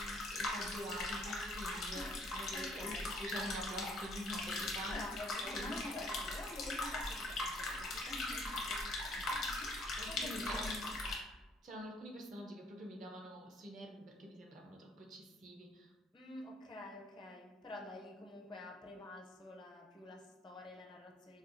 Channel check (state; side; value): normal; both; correlation 0.62